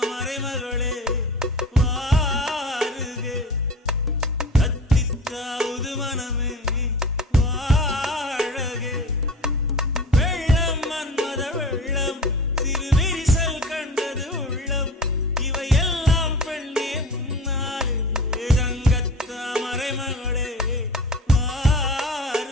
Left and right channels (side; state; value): both; normal; correlation 0.37